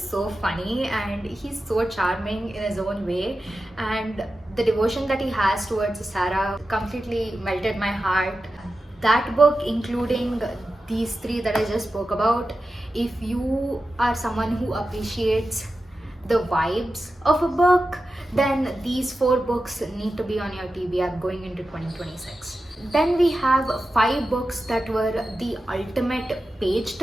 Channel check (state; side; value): normal; both; correlation 0.92